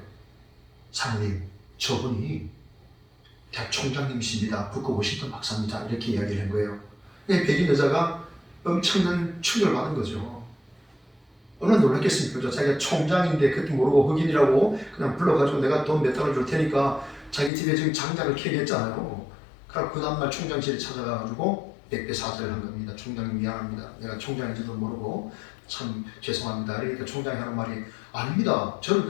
사모님, 저분이 대학 총장님이십니다. 부커 워싱턴 박사입니다. 이렇게 이야기를 한 거예요. 백인 여자가 엄청난 충격을 받은 거죠. 얼마나 놀랐겠습니까? 자기가 총장인데 그것도 모르고 흑인이라고 그냥 불러가지고 내가 돈 몇 달러 줄 테니까 자기 집에 지금 장작을 캐게 했잖아요. 그래서 그 다음날 총장실에 찾아가가지고 백배 사죄를 한 겁니다. 총장님 미안합니다. 내가 총장인지도 모르고 참 죄송합니다. 그러니까 총장이 하는 말이 아닙니다. 저는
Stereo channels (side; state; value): right; drops out; at 17.5 s